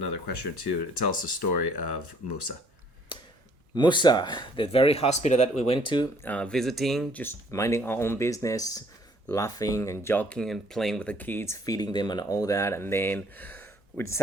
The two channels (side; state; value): both; normal; correlation 0.61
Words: question or two. Tell us the story of Musa. Musa, the very hospital that we went to, visiting, just minding our own business, laughing and joking and playing with the kids, feeding them and all that. And then we